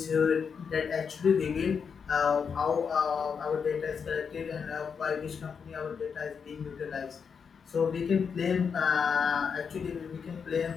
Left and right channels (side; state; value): right; quieter; 6.3 dB